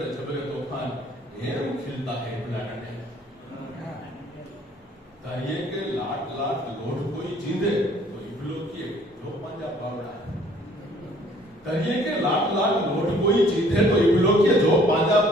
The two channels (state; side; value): normal; both; correlation 0.57